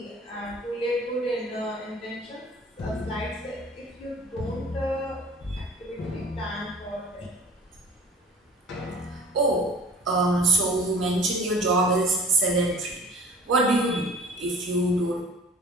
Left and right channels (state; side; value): normal; both; correlation 0.46